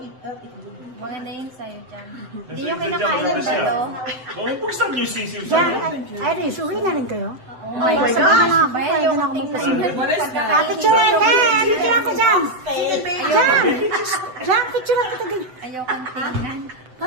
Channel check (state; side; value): late; left; 7.9 ms